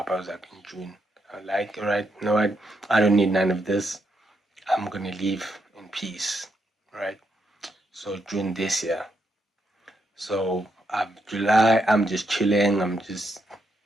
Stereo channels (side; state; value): both; normal; correlation 0.80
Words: I was like in June. I was like, all right, you know what? I don't need none of this. I'm gonna leave in peace, right? So June this year. So July, I'm just chilling. I'm just